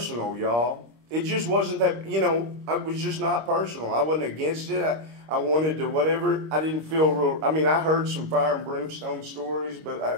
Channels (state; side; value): late; left; 26 ms